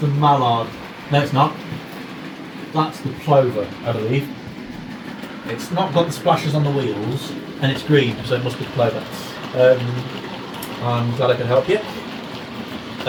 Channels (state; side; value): identical; both; correlation 1.00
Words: Mallard. No, it's not. That's the Plover, I believe. It's not got the splashes on the wheels, and it's green, so it must be Plover. I'm glad I could help you.